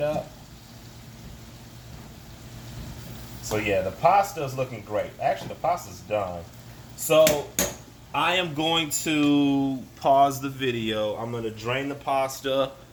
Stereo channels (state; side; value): identical; both; correlation 1.00